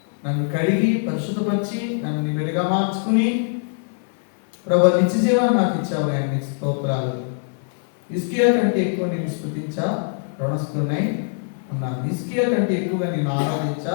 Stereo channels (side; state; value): right; silent; 57 dB below the other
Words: నన్ను కడిగి పరిశుద్ధపరిచి నన్ను నీ వెలుగా మార్చుకుని ప్రభువా నిత్య జీవాన్ని నాకు ఇచ్చావు. అన్ని స్తోత్రాలు. హిజ్కియా కంటే ఎక్కువ నేను స్తుతించా రుణస్థున్నై ఉన్నాను. హిజ్కియా కంటే ఎక్కువగా నేను ఆరాధించా